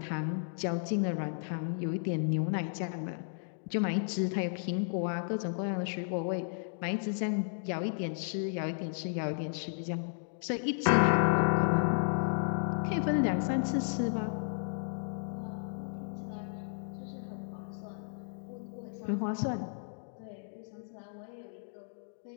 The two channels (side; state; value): right; silent; digital silence